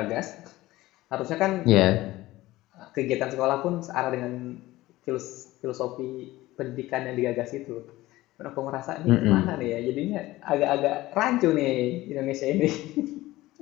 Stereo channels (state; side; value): quieter; right; 17.6 dB